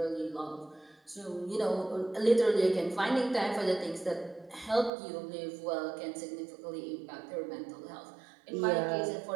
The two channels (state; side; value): drops out; left; at 4.9 s